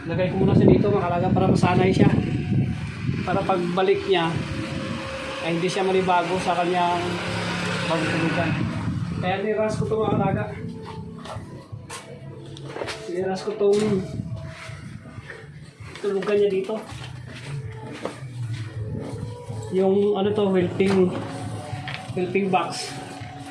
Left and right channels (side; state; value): both; identical; correlation 1.00